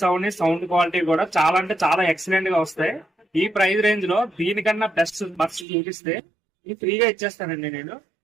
అవని సౌండ్ క్వాలిటీ కూడా చాలా అంటే చాలా ఎక్సలెంట్ గా వస్తాయి. ఈ ప్రైస్ రేంజ్ లో దీనికన్నా బెస్ట్ బర్డ్స్ చూపిస్తే ఇది ఫ్రీగా ఇచ్చేస్తానండి నేను.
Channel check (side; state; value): left; drops out; at 5.7 s